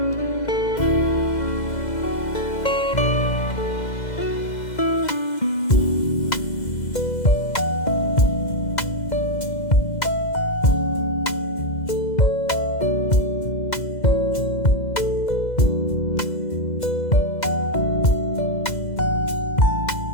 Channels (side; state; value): right; late; 2.0 ms